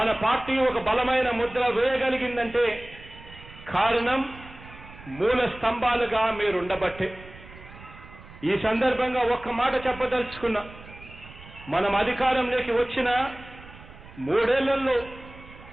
పార్టీ ఒక బలమైన ముద్ర వేయగలిగిందంటే కారణం మూల స్తంభాలుగా మీరుండబట్టే. ఈ సందర్భంగా ఒక్క మాట చెప్పదలుచుకున్నా. మనం అధికారంలోకి వచ్చిన 3 ఏళ్లలో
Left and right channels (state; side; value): noise; right; rumble, 18 dB below the sound